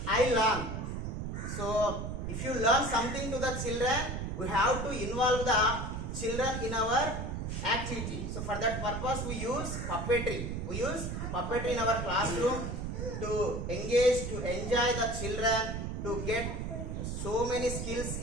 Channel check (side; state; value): right; noise; rumble, 4 dB below the sound